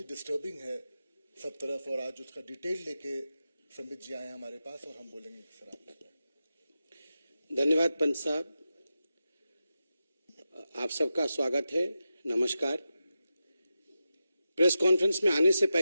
डिस्टर्बिंग है सब तरफ। और आज उसका डिटेल लेके संबित जी आए हैं हमारे पास और हम बोलेंगे सर आप। धन्यवाद पंत साहब, आप सबका स्वागत है। नमस्कार। प्रेस कॉन्फ्रेंस में आने से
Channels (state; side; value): inverted; both; correlation -0.90